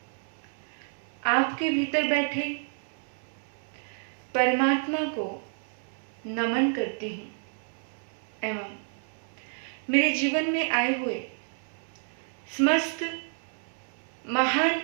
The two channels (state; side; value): silent; left; 58 dB below the other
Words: आपके भीतर बैठे परमात्मा को नमन करती हूँ एवं मेरे जीवन में आए हुए समस्त महान